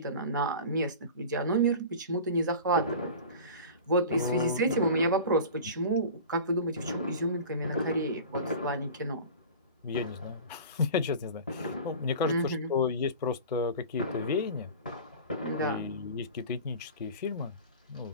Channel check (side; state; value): both; inverted; correlation -0.36